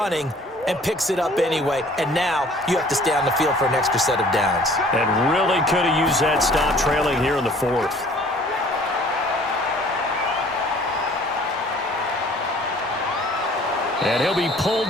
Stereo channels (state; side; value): normal; both; correlation 0.53